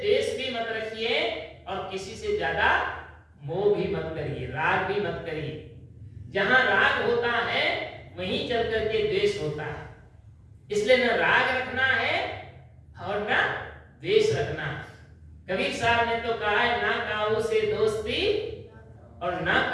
भी मत रखिए और किसी से ज्यादा मोह भी मत करिए, राग भी मत करिए। जहां राग होता है वहीं चल करके द्वेष होता है। इसलिए न राग रखना है और न द्वेष रखना है। कबीर साहब ने तो कहा है, ना काऊ से दोस्ती और ना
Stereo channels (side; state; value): both; identical; correlation 1.00